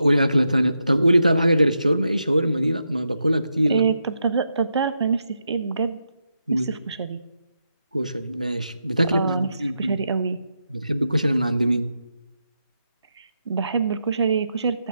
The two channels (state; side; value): inverted; both; correlation -0.84